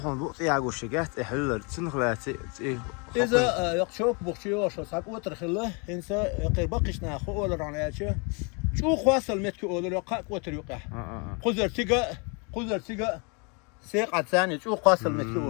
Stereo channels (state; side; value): quieter; right; 33.2 dB